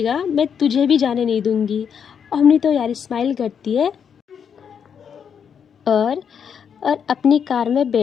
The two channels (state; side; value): quieter; right; 7.4 dB